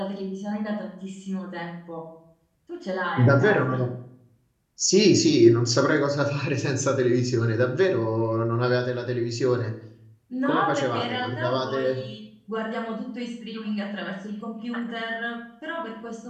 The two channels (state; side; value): identical; both; correlation 1.00